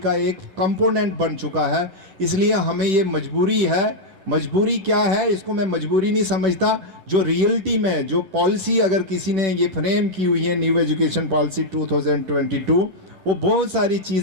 एक कंपोनेंट बन चुका है, इसलिए हमें ये मजबूरी है। मजबूरी क्या है, इसको मैं मजबूरी नहीं समझता। जो रियलिटी में जो पॉलिसी अगर किसी ने ये फ्रेम की हुई है, न्यू एजुकेशन पॉलिसी 2022, वो बहुत सारी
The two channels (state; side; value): late; left; 10 ms